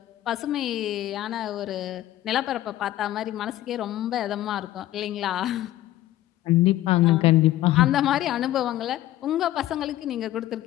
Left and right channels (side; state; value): right; quieter; 14.5 dB